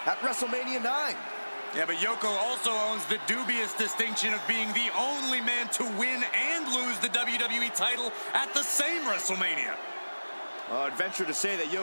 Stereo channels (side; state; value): both; inverted; correlation -1.00